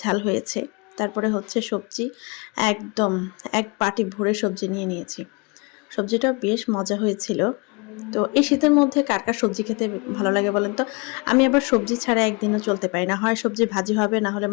হয়েছে। তারপরে হচ্ছে সবজি, একদম এক বাটি ভরে সবজি নিয়ে নিয়েছি। সবজিটাও বেশ মজা হয়েছিল। তো এই শীতের মধ্যে কার, কার সবজি খেতে ভালো লাগে বলেন তো? আমি আবার সবজি ছাড়া একদিনও চলতে পারি না। হয় সবজি ভাজি হবে, না হলে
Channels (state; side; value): quieter; right; 29.6 dB